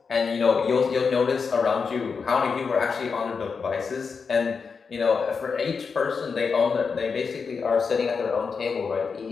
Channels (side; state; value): right; quieter; 5.4 dB